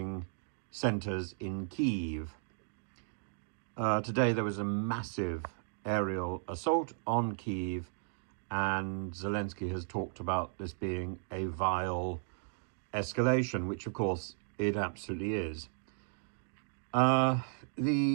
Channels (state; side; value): silent; left; digital silence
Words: centers in Kyiv. Today there was a massive aerial assault on Kyiv, and Zelensky has talked about this being a vile escalation, which of course it absolutely is. There